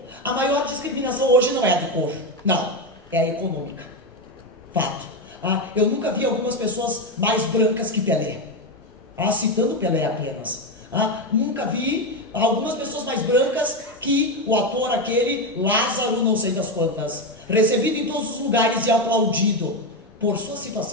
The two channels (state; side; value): normal; both; correlation 0.11